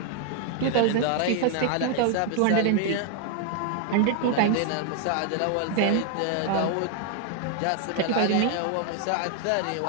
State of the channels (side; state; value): both; different; correlation 0.00